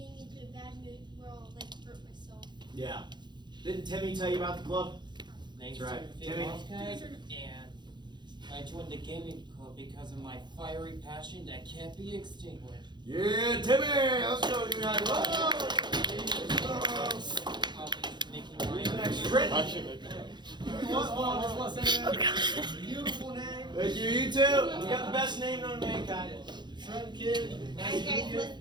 into a bad mood where I'll hurt myself. Yeah. Didn't Timmy tell you about the club? Thanks That's right. Timmy. And I joined the gaming club because of my fiery passion that can't be extinguished. Yeah, Timmy. Let's go. You guys. Beautiful name. Thank you. You too. You got the best name known to mankind. Trent Kid. Alright, guys,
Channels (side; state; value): left; late; 0.21 ms